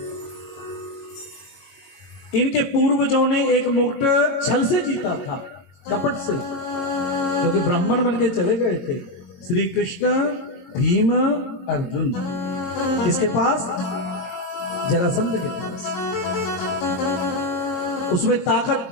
इनके पूर्वजों ने एक मुकुट छल से जीता था, कपट से, क्योंकि ब्राह्मण बन के चले गए थे। श्री कृष्ण, भीम, अर्जुन किसके पास? जरासंध के पास। उसमें ताकत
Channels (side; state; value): right; late; 23 ms